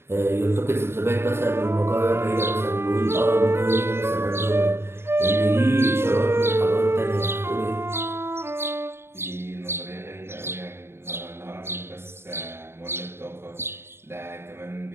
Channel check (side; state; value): left; late; 0.12 ms